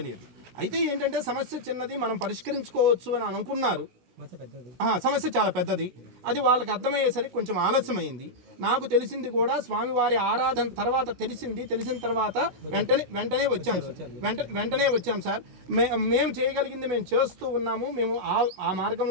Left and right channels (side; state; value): left; late; 16 ms